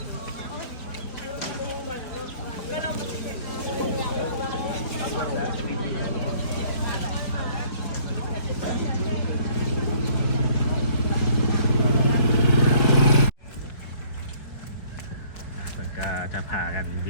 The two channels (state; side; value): late; right; 4.5 ms